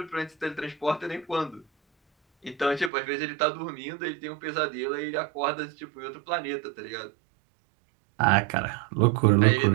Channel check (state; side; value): drops out; left; at 2.9 s